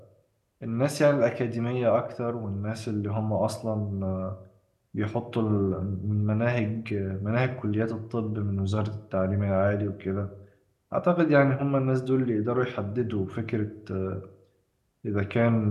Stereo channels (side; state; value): both; identical; correlation 1.00